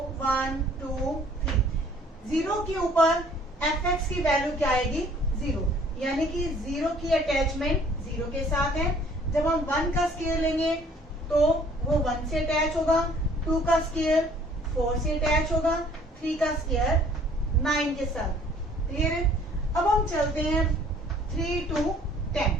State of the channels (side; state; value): both; normal; correlation 0.57